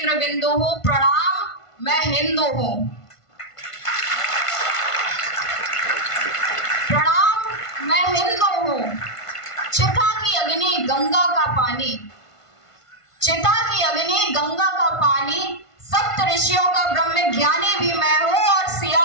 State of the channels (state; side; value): late; right; 1.5 ms